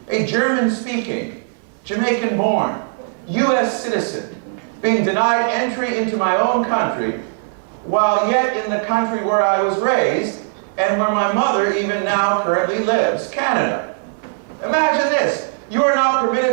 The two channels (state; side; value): silent; left; 63 dB below the other